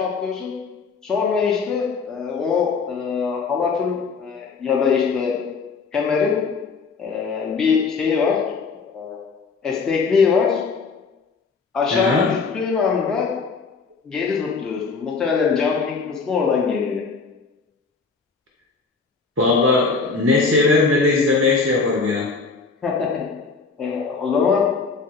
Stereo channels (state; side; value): quieter; right; 4.7 dB